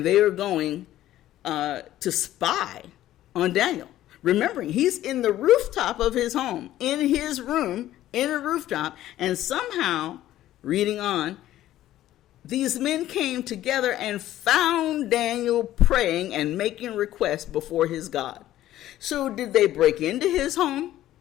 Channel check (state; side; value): quieter; right; 13.7 dB